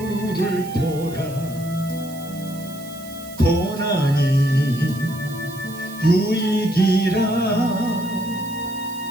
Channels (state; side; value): noise; right; hiss, 17 dB below the sound